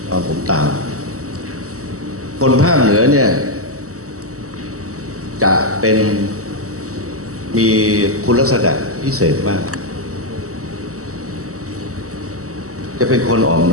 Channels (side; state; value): left; late; 0.65 ms